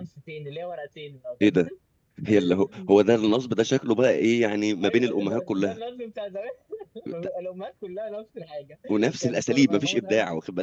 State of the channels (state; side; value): identical; both; correlation 1.00